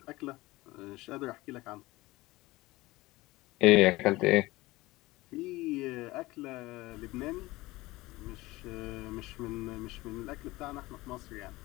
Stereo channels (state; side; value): quieter; right; 19.9 dB